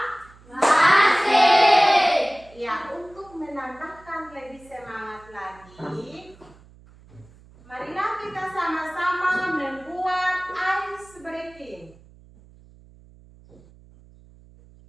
Ya, untuk menambahkan lebih semangat lagi, marilah kita sama-sama membuat ice breaking.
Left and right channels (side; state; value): right; noise; hum, 25 dB below the sound